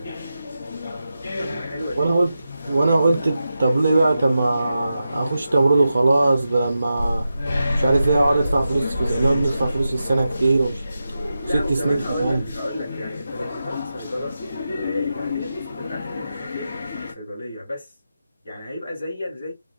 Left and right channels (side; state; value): both; inverted; correlation -0.90